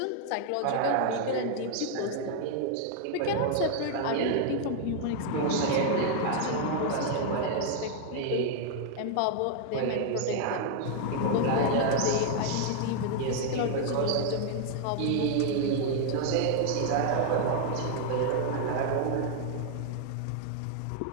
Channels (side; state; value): both; different; correlation 0.00